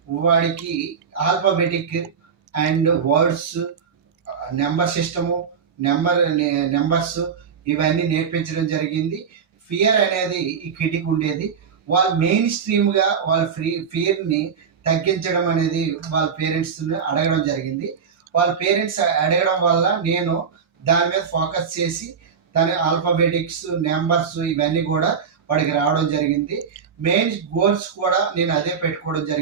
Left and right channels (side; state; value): left; quieter; 6.6 dB